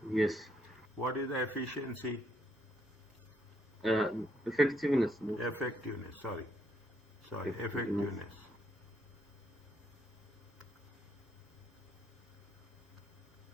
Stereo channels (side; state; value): both; normal; correlation 0.73